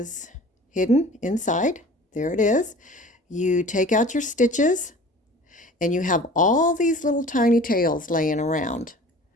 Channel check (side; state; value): both; normal; correlation 0.43